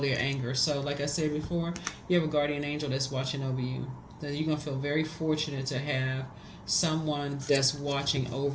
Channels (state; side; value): identical; both; correlation 1.00